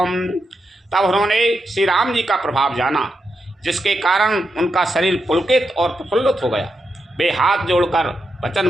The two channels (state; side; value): normal; both; correlation 0.85